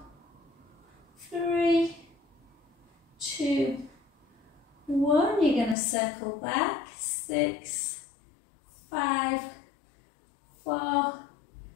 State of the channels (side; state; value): right; drops out; at 5.8 s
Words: 3, 2, 1. You're going to circle back, 6, 5, 4,